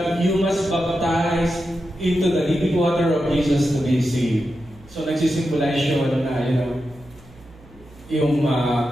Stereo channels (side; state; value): right; noise; hum, 24 dB below the sound